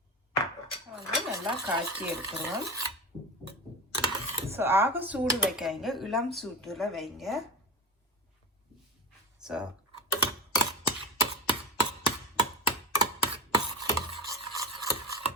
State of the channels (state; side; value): normal; both; correlation 0.23